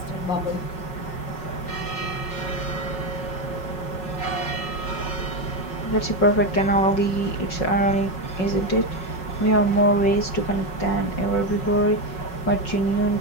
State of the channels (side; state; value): right; late; 5.4 ms